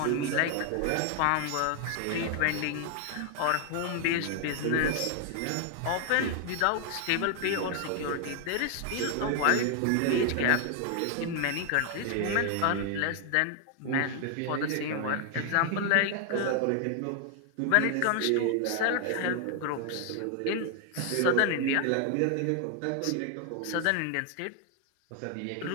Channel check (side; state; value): both; different; correlation 0.00